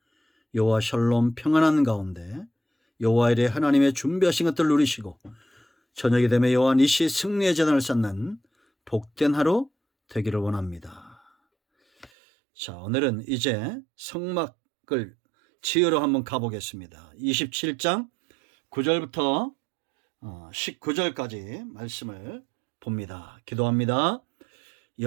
여호와 샬롬 평안한 가운데 여호와 이레 하나님의 준비하신 것들을 누리시고 저녁이 되면 여호와 니시 승리의 재단을 쌓는 복된 하루 되기를 원합니다. 자, 오늘은 이제 성막을 지으러 한번 가보겠습니다. 27장 9절부터 19절까지 말씀을 봅니다. 기도합니다.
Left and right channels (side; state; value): left; drops out; at 12.1 s